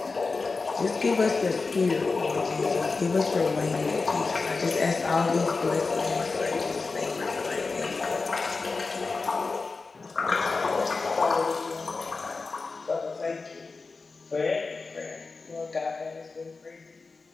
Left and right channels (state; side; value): quieter; right; 4.1 dB